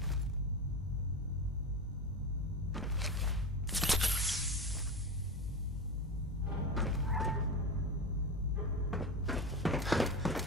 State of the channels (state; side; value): normal; both; correlation 0.22